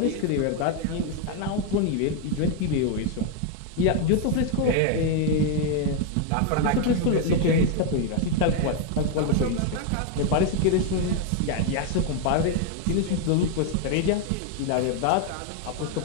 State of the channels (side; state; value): both; different; correlation 0.01